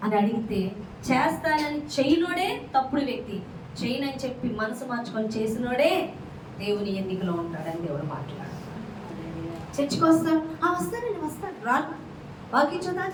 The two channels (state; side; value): identical; both; correlation 1.00